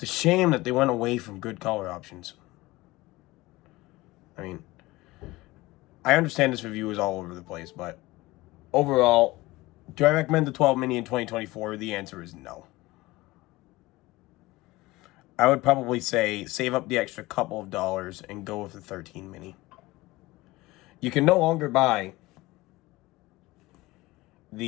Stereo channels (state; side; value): quieter; right; 19.9 dB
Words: a shame that they went away from good color options. I mean, I understand this review is all over the place, but overall, do I recommend the 12 mini in 2024? The answer is no. I would probably say save up the extra couple of dollars and go with the 13 mini. You can no longer buy